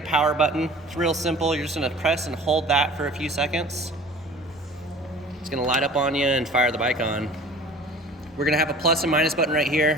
power button. It's real simple. You're just gonna press and hold that for a few seconds. It's gonna light up on you and fire the bike on. We're gonna have a plus and minus button right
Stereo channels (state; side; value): normal; both; correlation 0.45